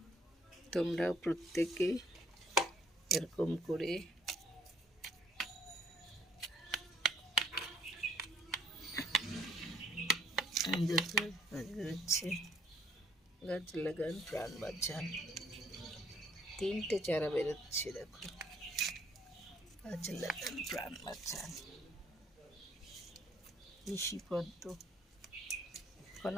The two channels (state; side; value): normal; both; correlation 0.63